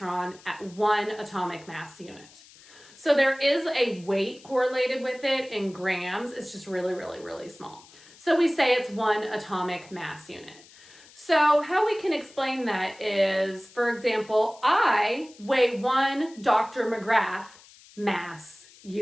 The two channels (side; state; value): left; noise; hiss, 23 dB below the sound